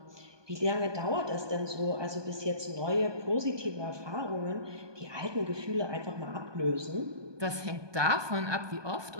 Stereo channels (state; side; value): late; left; 1.2 ms